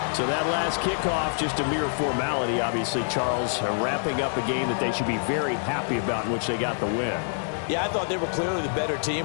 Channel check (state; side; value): silent; right; 61 dB below the other